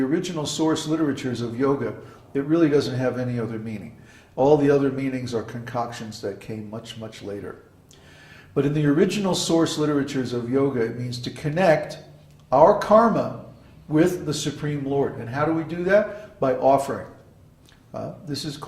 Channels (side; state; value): both; identical; correlation 1.00